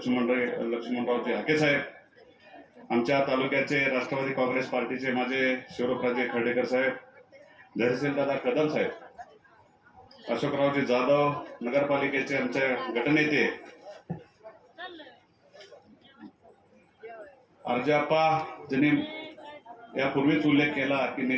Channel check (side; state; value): both; identical; correlation 1.00